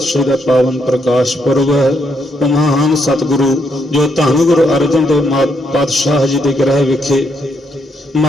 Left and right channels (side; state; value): both; normal; correlation 0.76